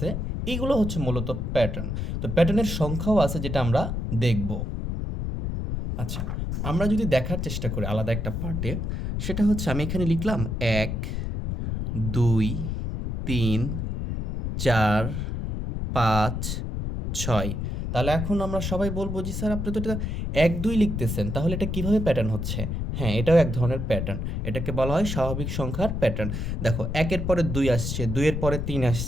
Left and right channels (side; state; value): left; noise; rumble, 3 dB below the sound